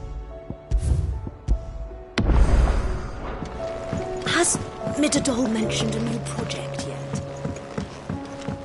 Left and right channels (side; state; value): both; identical; correlation 1.00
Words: Has Mitterdol mentioned a new project yet?